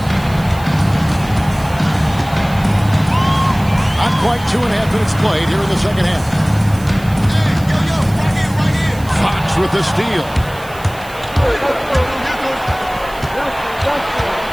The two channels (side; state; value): right; noise; hiss, 20 dB below the sound